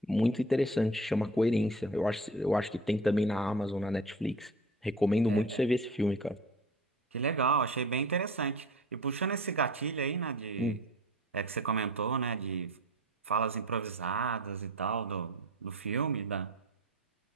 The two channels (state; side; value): normal; both; correlation 0.39